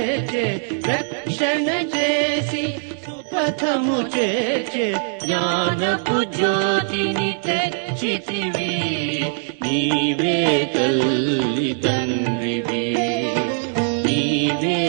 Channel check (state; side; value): silent; left; digital silence